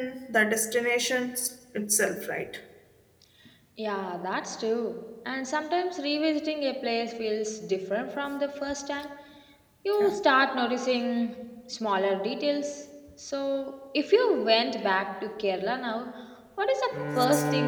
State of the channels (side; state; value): both; identical; correlation 1.00